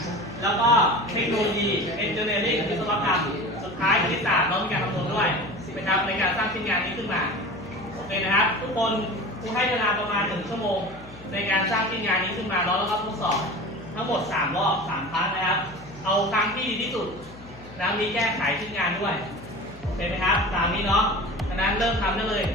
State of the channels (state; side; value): noise; left; hum, 19 dB below the sound